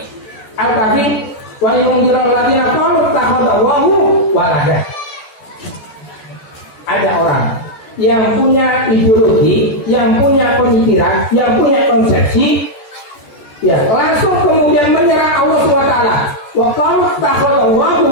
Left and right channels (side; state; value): right; late; 14 ms